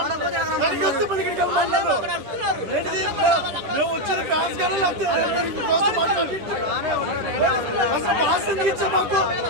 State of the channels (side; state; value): left; late; 11 ms